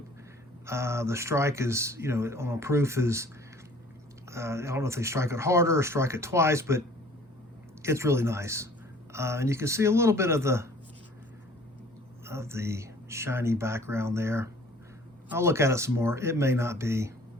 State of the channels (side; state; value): both; normal; correlation 0.52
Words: The strike is, you know, on a proof is, I don't know if they strike it harder or strike it twice, but it's really nice. And you can see a little bit of the shiny background there. I'll look at it some more. It may not be.